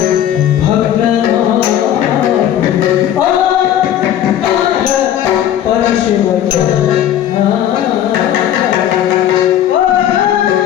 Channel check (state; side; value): quieter; right; 11.0 dB